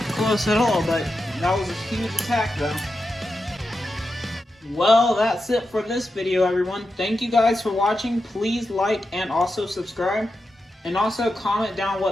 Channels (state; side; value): normal; both; correlation 0.89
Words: close at all, but that was a huge attack, though. Well, that's it for this video, everyone. Thank you guys for watching. Please like and also subscribe. And also comment down